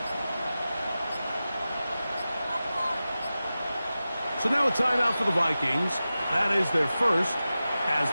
So now a timeout for the Vikings. That is their first, as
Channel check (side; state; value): both; inverted; correlation -0.94